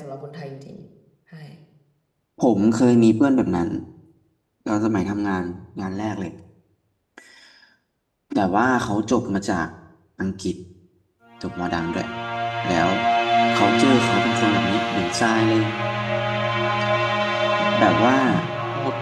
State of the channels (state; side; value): identical; both; correlation 1.00